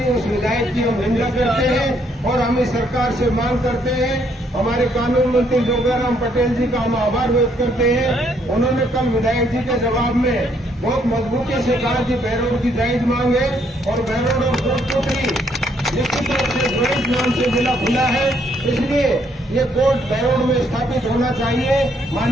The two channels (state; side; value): normal; both; correlation 0.70